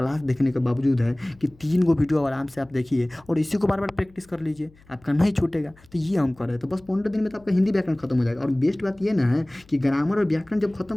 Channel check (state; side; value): noise; left; hum, 27 dB below the sound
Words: देखने के बावजूद है कि 3 को वीडियो आराम से आप देखिए और इसी को बार बार प्रैक्टिस कर लीजिए, आपका नहीं छूटेगा। तो ये हम कर रहे हैं, तो बस 15 दिन में तो आपका हिंदी व्याकरण खत्म हो जाएगा। और बेस्ट बात ये ना है कि ग्रामर और व्याकरण जब